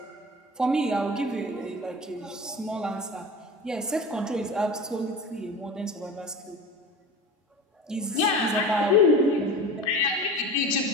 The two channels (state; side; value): normal; both; correlation 0.33